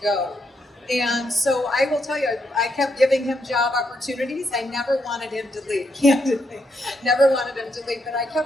And so I will tell you, I kept giving him job opportunities. I never wanted him to leave, candidly. Never wanted him to leave, but I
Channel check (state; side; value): normal; both; correlation 0.79